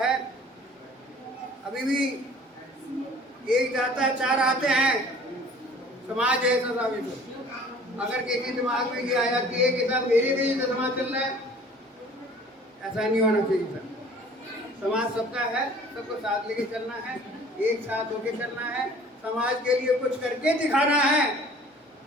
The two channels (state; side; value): normal; both; correlation 0.49